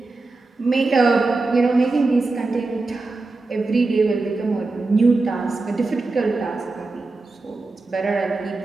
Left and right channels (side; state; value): left; quieter; 3.5 dB